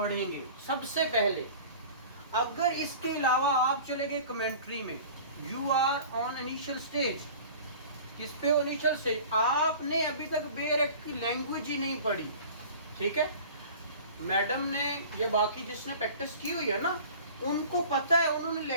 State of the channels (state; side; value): inverted; both; correlation -0.42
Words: सबसे पहले। अगर इसके अलावा आप चले गए कमेंट्री में, you are on initial stage, किस पे इनिशियल स्टेज, आपने अभी तक बेयर एक्ट की लैंग्वेज ही नहीं पढ़ी, ठीक है। मैडम ने ये बाकी जिसने प्रैक्टिस की हुई है ना, उनको पता है, उन्होंने